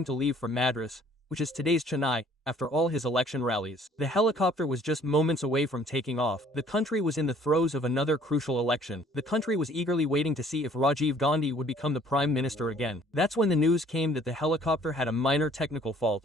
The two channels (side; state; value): both; normal; correlation 0.57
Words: to leave for Madras, which is today's Chennai, after all his election rallies. The helicopter was just moments away from taking off. The country was in the throes of another crucial election. The country was eagerly waiting to see if Rajiv Gandhi would become the Prime Minister again. That's when the news came that the helicopter had a minor technical